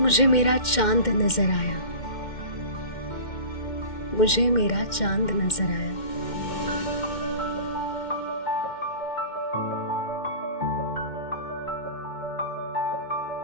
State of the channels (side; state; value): right; late; 2.1 ms